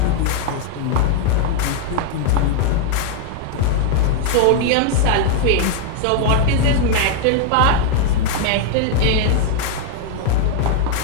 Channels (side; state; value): both; different; correlation 0.00